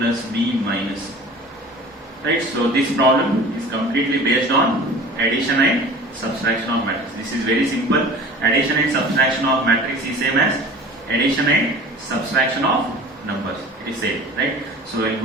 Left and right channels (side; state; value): both; normal; correlation 0.41